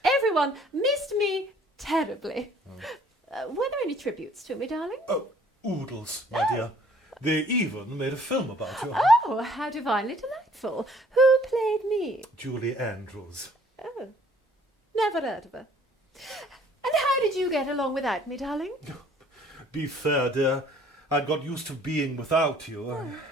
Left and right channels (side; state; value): both; normal; correlation 0.58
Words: Everyone missed me terribly. Were there any tributes to me, darling? Oh, oodles, my dear. They even made a film about you. Oh, how divinely delightful. Who played me? Julie Andrews. Oh, never heard of her. And how did you get along without me, darling? Be fair, dear. I'd got used to being without you.